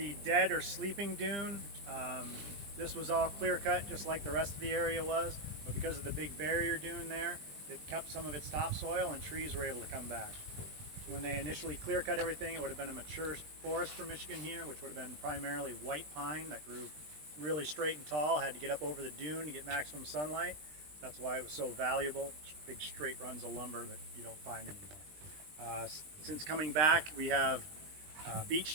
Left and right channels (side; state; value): left; late; 20 ms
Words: dead or sleeping dune. This was all clear cut just like the rest of the area was, but because of the big barrier dune there, it kept some of its topsoil and trees were able to come back. When they initially clear cut everything, it would have been a mature forest for Michigan here, which would have been primarily white pine that grew really straight and tall, had to get up over the dune to get maximum sunlight. That's why it was so valuable. Big straight runs of lumber that you don't find anymore. Since coming back, we have beech